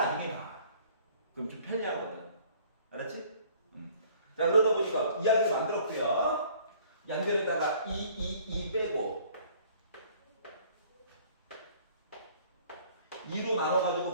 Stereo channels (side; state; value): both; inverted; correlation -0.55